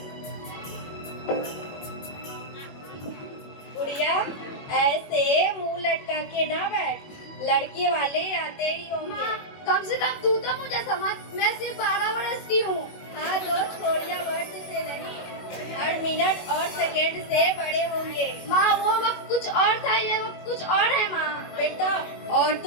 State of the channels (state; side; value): late; right; 21 ms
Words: गुड़िया, ऐसे मुंह लटका के ना बैठ, लड़के वाले आते ही होंगे। कम से कम तू तो मुझे समझ, मैं सिर्फ 12 वर्ष की हूँ। हाँ तो छोड़िया वर्ष से नहीं, हर मिनट और सेकेंड से बड़े होंगे। माँ वो वक्त कुछ और था, ये वक्त कुछ और है माँ। बेटा,